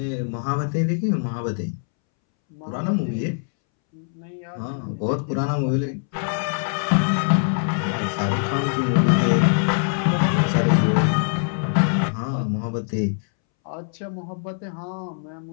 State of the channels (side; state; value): right; silent; 63 dB below the other